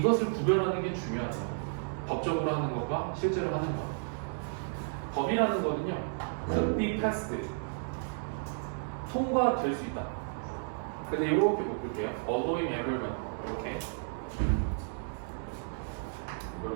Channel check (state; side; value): silent; left; digital silence